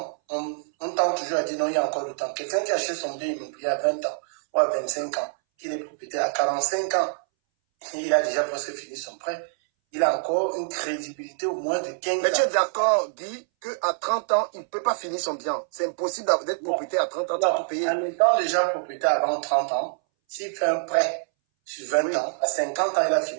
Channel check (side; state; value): left; silent; 61 dB below the other